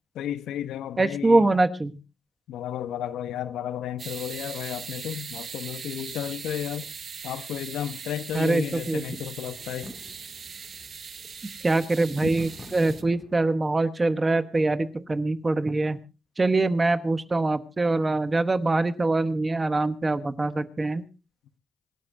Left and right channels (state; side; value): normal; both; correlation 0.92